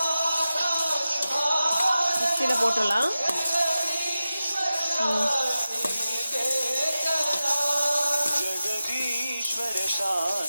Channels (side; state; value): both; inverted; correlation -0.92